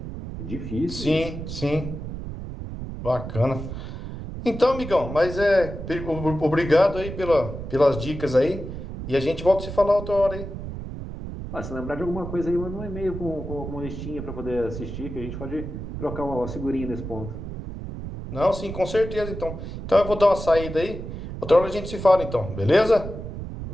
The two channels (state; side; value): noise; right; rumble, 8 dB below the sound